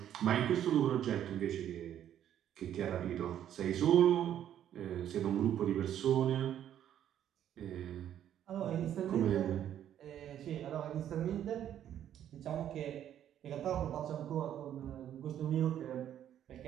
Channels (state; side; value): quieter; left; 10.6 dB